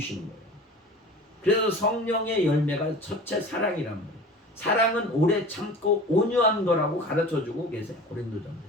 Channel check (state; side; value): normal; both; correlation 0.39